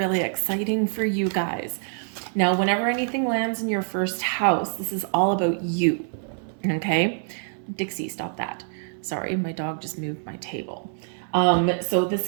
exciting for you guys. Now, whenever anything lands in your first house, this is all about you, okay? Dixie, stop that. Sorry, my dog just moved my table. So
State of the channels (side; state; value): left; silent; digital silence